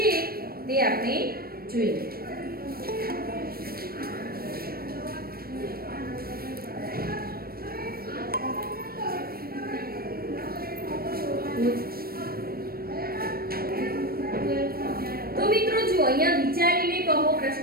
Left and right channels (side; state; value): left; late; 0.44 ms